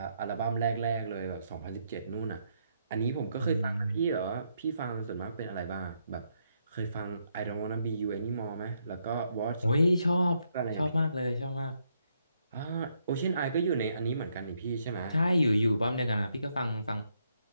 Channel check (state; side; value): inverted; both; correlation -0.76